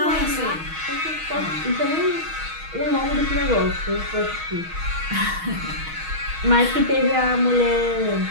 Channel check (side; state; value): left; late; 6.3 ms